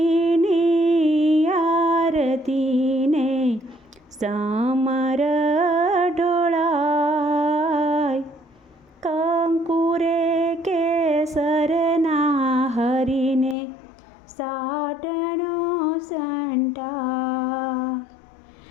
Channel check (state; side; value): drops out; right; at 13.6 s